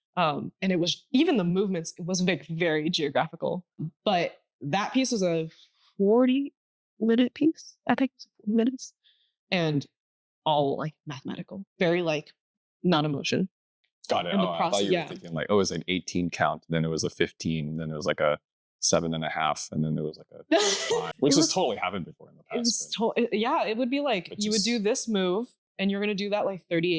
And it was, even the movements, it was very geographical. But that piece was a 40-minute piece. I think it was 40 minutes. And all like mathematical, very like non-emotion. Got it. And the I thought you were thinking like, oh, it was an 18 count, then it was a 15, then it was like a 7.5, and then there was like a 5, which has totally happened before in the past. It would be like you would do this move and you're going to do that like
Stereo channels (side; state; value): both; identical; correlation 1.00